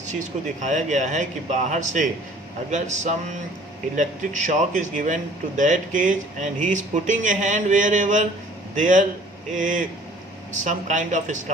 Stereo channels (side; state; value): both; normal; correlation 0.52